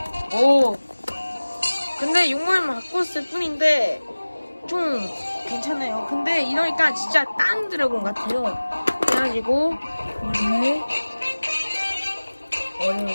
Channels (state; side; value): inverted; both; correlation -1.00